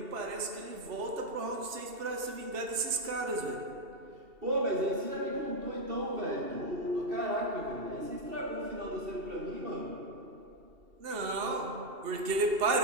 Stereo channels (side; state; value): left; late; 2.7 ms